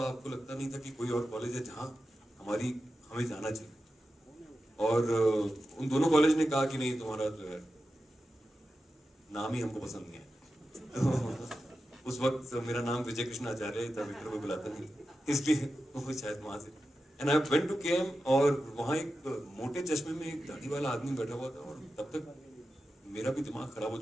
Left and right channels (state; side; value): normal; both; correlation 0.92